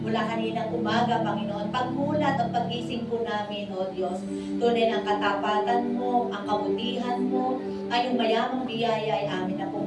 mula kaninang umaga, Panginoon. Pagmulat at pagising po namin, O Diyos, tunay ang katapatan mo, ang kabutihan mo, ay yung mayamang biyaya ay amin na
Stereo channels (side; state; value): both; identical; correlation 1.00